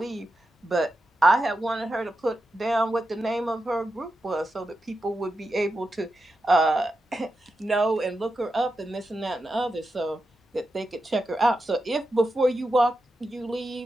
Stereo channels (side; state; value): both; normal; correlation 0.89